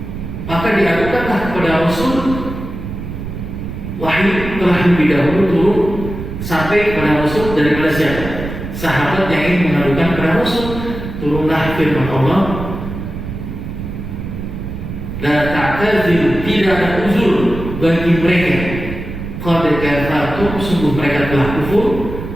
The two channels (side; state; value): right; noise; rumble, 8 dB below the sound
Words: Maka diadukanlah kepada Rasul. Wahyu telah lebih dahulu turun sampai kepada Rasul daripada siapa? Sahabat yang ingin mengadukan kepada Rasul. Turunlah firman Allah, la ta'tazir, tidak ada uzur bagi mereka. Qad kafartum, sungguh mereka telah kufur